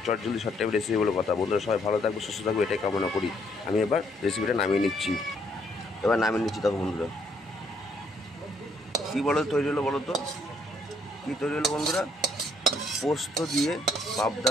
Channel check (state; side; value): normal; both; correlation 0.69